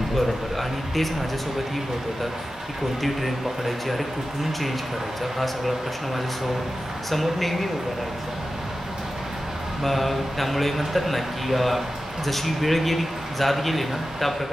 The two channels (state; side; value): normal; both; correlation 0.93